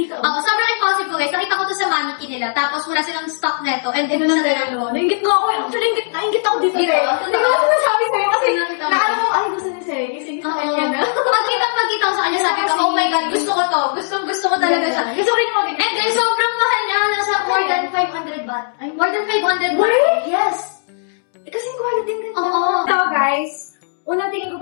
Oo, sobrang impulsive ko guys. Nakita ko to sa mannequin nila. Tapos wala silang stock neto. And Ito ito na sa dalawa. Naingit ko ako. Actually, naingit ako dito. Dito? Hindi ko kasi nasabi sa'yo kasi Nakita mo. naano ko, ay, gusto ni Sey. Kasi gusto Oo. niya na. Pagkita ko sa kanya, sabi ko, oh my God, gusto ko to. Gusto ko talaga siya. Gusto rin mo. And then, sobrang mahal niya. Nasa more than 500 baht. More than 500 baht. Wait! Yes. Kasi quality din. Oo. Ito guys, unang tingin ko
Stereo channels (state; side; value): silent; right; 67 dB below the other